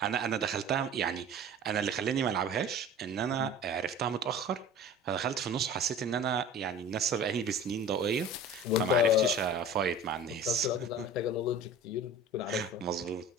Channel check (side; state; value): both; normal; correlation 0.40